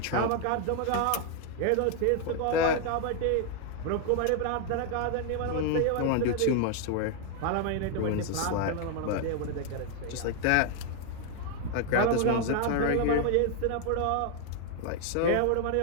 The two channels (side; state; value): both; different; correlation 0.00